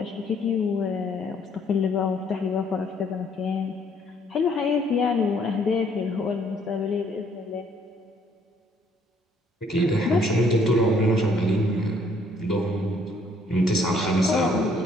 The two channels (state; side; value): normal; both; correlation 0.64